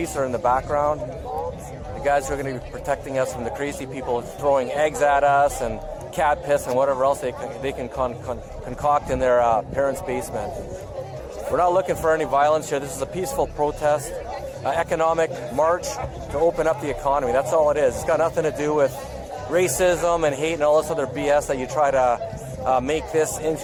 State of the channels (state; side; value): identical; both; correlation 1.00